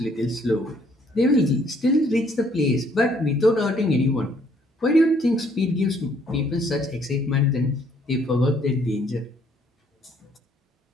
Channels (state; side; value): normal; both; correlation 0.65